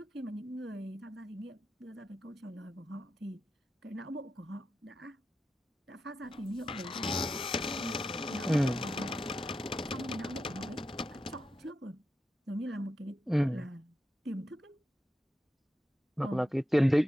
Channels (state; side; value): normal; both; correlation 0.89